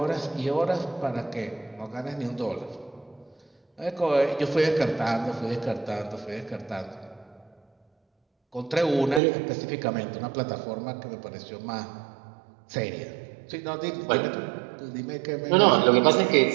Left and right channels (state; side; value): drops out; left; at 9.2 s